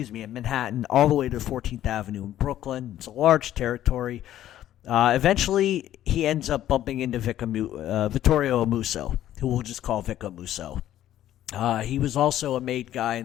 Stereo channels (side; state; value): right; quieter; 12.5 dB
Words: all the way to 14th Avenue in Brooklyn. It's a large territory. Eventually, he ends up bumping into Vittorio Amuso, who we'll just call Vic Amuso. He was also a made guy